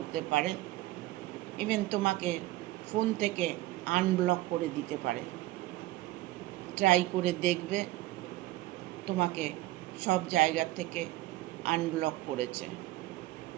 পারে, ইভেন তোমাকে ফোন থেকে আনব্লক করে দিতে পারে। ট্রাই করে দেখবে, তোমাকে সব জায়গা থেকে আনব্লক করেছে।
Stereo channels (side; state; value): left; quieter; 17.5 dB